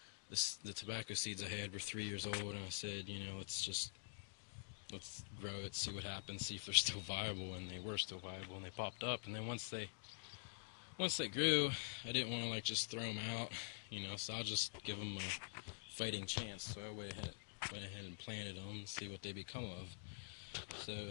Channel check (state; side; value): silent; right; digital silence